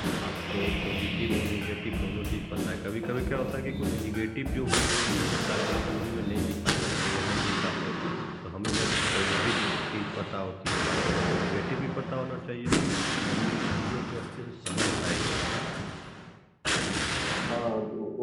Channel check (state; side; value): identical; both; correlation 1.00